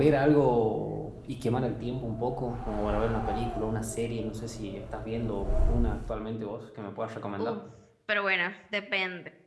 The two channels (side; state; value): both; identical; correlation 1.00